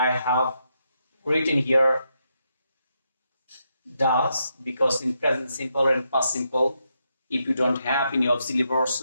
have written here does, because in present simple and past simple, if you don't have any auxiliary verb,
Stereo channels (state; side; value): inverted; both; correlation -0.81